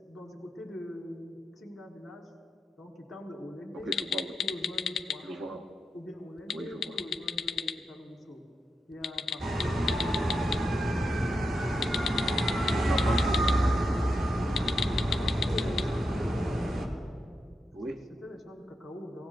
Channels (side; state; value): both; normal; correlation 0.87